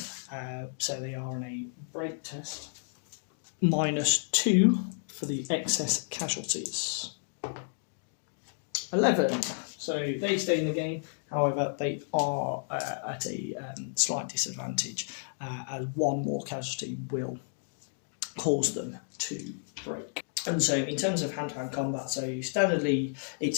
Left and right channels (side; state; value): right; silent; digital silence